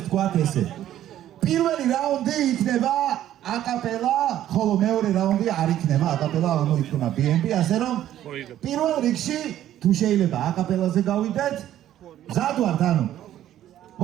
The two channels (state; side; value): quieter; left; 12.2 dB